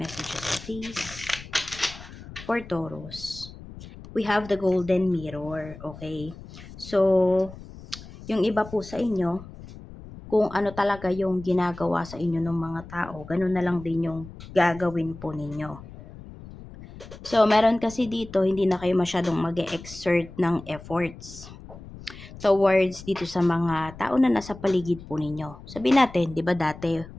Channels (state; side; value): noise; left; rumble, 16 dB below the sound